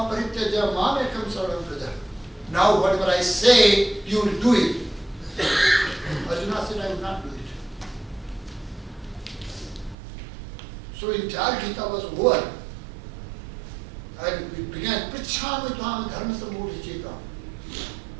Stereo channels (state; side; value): drops out; left; at 10.0 s